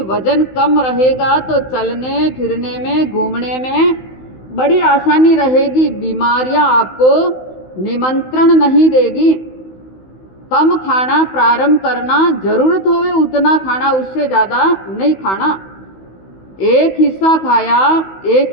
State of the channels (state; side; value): late; right; 16 ms